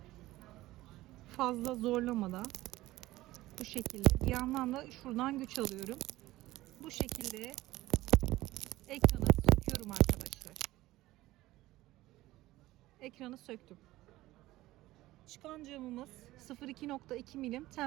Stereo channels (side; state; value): left; quieter; 17.1 dB